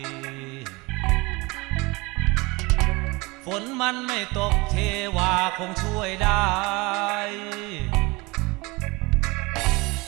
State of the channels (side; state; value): left; quieter; 24.8 dB